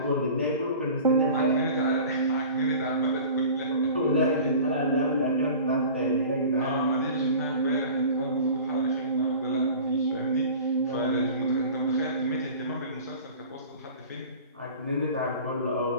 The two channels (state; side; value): inverted; both; correlation -0.41